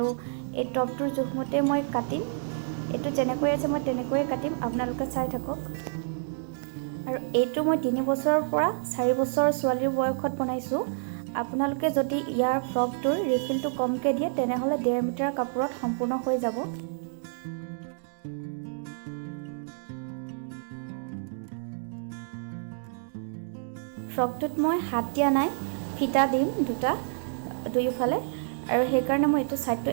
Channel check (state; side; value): silent; left; digital silence